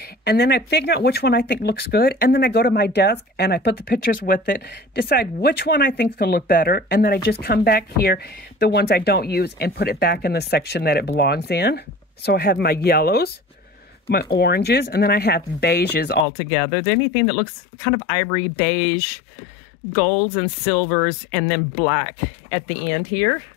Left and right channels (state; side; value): drops out; right; at 16.2 s